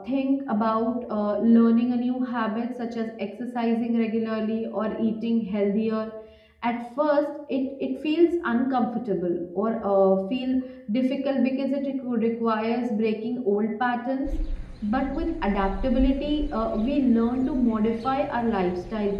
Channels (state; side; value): identical; both; correlation 1.00